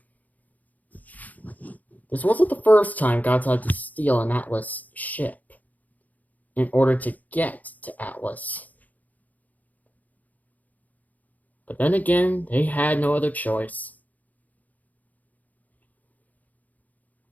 This wasn't the first time Godzilla had to steal an Atlas ship in order to get to Atlas. But then again, they had no other choice.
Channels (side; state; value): right; late; 0.079 ms